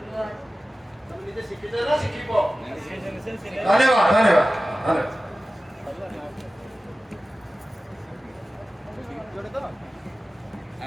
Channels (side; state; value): both; normal; correlation 0.96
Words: तुम निजे शिखिछ ना शिखिबो धन्यवाद धन्यवाद